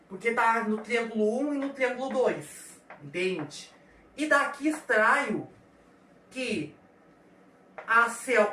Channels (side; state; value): both; identical; correlation 1.00